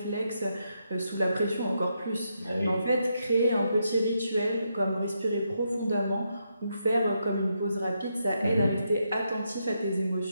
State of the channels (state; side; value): inverted; both; correlation -0.81